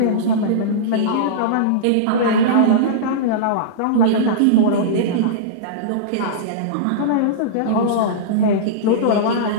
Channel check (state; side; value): different; both; correlation -0.04